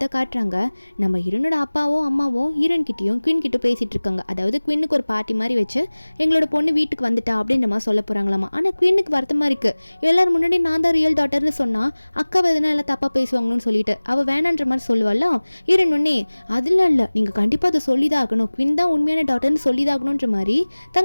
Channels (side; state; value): both; inverted; correlation -1.00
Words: தான் காட்டுறாங்க, நம்ம ஹீரோனோட அப்பாவும் அம்மாவும் ஹீரோன் கிட்டேயும் குயின் கிட்ட பேசிகிட்டு இருக்காங்க. அதாவது குயினுக்கு ஒரு பார்ட்டி மாதிரி வச்சு எங்களோட பொண்ணு வீட்டுக்கு வந்துட்டா அப்படின்ற மாதிரி சொல்ல போகிறாங்களாமா. ஆனால் குயினுக்கு வருத்தமாக இருக்குது, எல்லோரும் முன்னாடி நான் தான் ரியல் டாட்டர்னு சொன்னால் அக்காவை எதனா எல்லாம் தப்பாக பேசுவாங்கன்னு சொல்லிட்டு அவள் வேணான்ற மாதிரி சொல்லுவாள். ஹீரோன் ஒன்னே அதெல்லாம் இல்லை, நீங்கள் கண்டிப்பாக அதை சொல்லி தான் ஆகணும், குயின் தான் உண்மையான டாட்டர்னு சொல்லி தான் ஆகணுன்ற மாதிரி